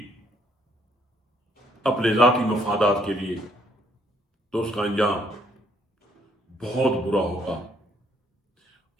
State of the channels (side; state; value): both; normal; correlation 0.68